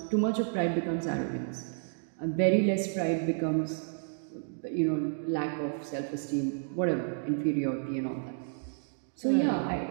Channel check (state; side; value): silent; left; digital silence